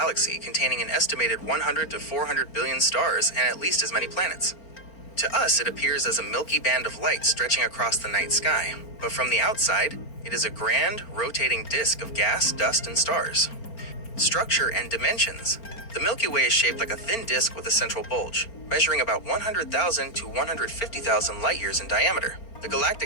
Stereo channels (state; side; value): late; right; 4.4 ms